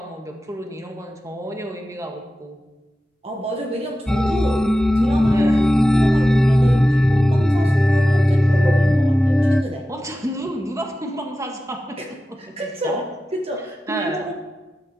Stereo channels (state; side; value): normal; both; correlation 0.94